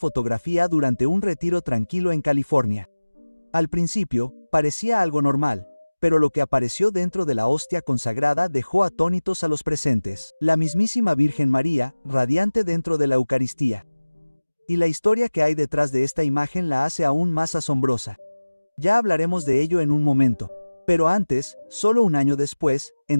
durante un retiro tranquilo en California. Al principio, parecía algo normal, pero lo que apareció dentro de la hostia consagrada dejó atónitos a los presentes. La mismísima Virgen María, radiante dentro de la Eucaristía. Y la historia que hay detrás de esta imagen la hace aún más asombrosa. Ya hablaremos de ello en un momento. Pero antes, solo un año después,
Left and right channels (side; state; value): both; inverted; correlation -1.00